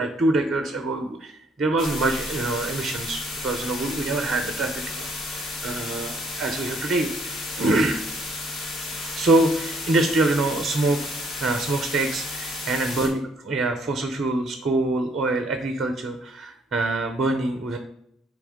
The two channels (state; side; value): normal; both; correlation 0.66